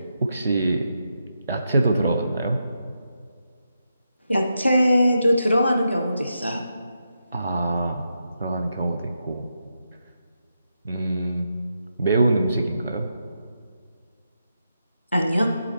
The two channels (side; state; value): both; inverted; correlation -0.84